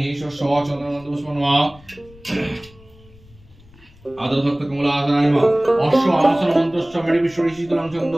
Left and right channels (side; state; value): left; noise; rumble, 25 dB below the sound